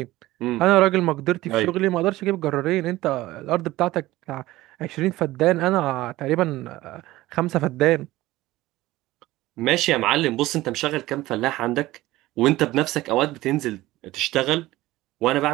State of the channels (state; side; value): quieter; left; 17.4 dB